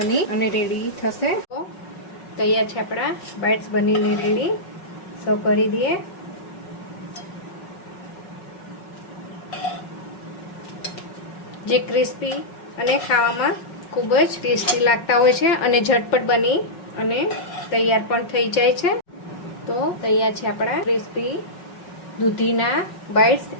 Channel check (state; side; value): late; right; 5.4 ms